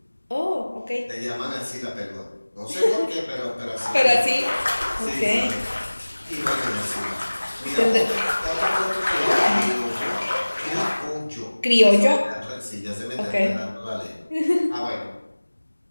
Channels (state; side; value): inverted; both; correlation -1.00